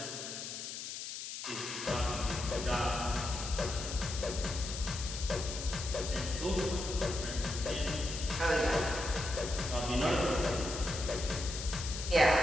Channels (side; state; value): left; noise; hiss, 7 dB below the sound